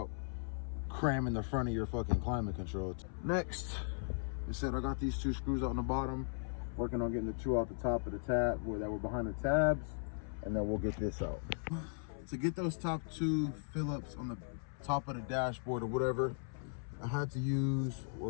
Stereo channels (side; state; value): right; silent; 53 dB below the other